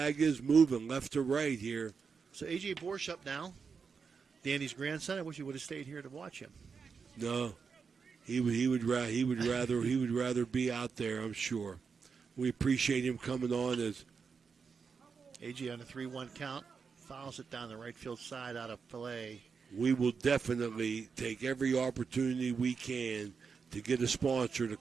is moving left to right here. So A.J. Borsch up now, Danny's grandson. I wish he would have stayed here to watch him. No. He would rather be out there, I'm sure. We appreciate him coming on as AJ on a 3-1 count, fouls it down the right field side out of play. We will definitely take every opportunity we can to get a sponsor to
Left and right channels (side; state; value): left; quieter; 5.6 dB